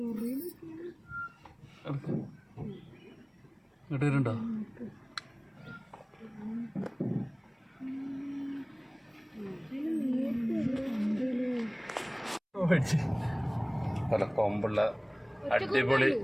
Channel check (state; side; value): identical; both; correlation 1.00